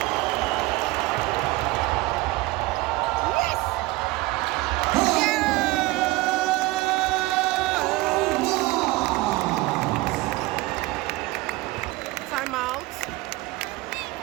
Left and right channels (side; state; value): left; quieter; 20.3 dB